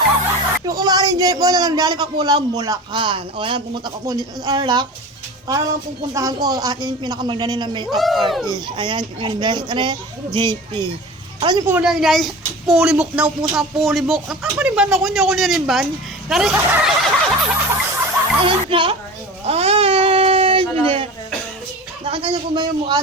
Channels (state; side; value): normal; both; correlation 0.34